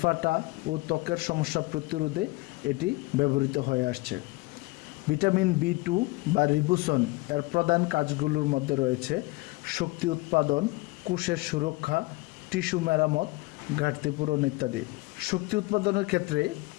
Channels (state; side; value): quieter; right; 23.1 dB